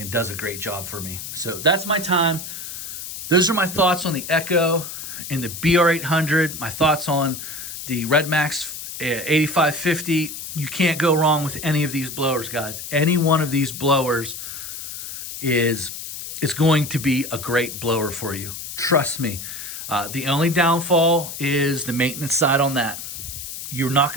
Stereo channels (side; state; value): left; noise; hiss, 9 dB below the sound